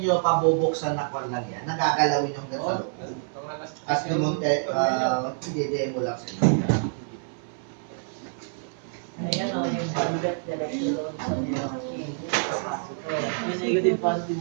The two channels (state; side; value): silent; left; 60 dB below the other